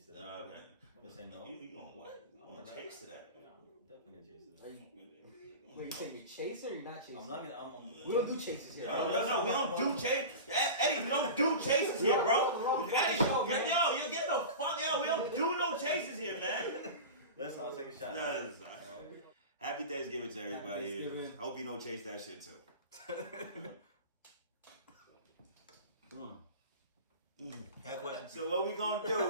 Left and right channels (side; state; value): both; inverted; correlation -0.31